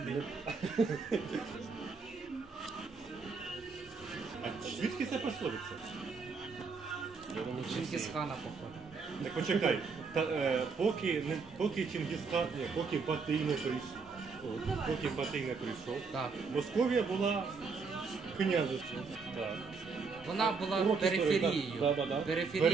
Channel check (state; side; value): quieter; left; 4.8 dB